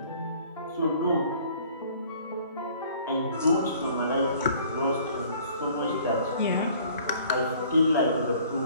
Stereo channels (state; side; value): inverted; both; correlation -0.54